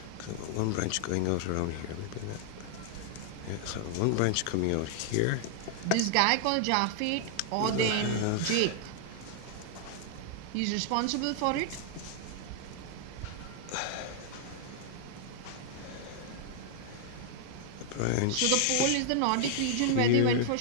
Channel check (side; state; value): both; different; correlation 0.00